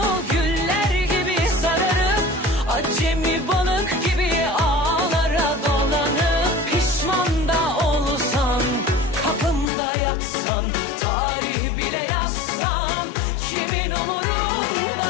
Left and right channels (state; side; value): drops out; right; at 9.7 s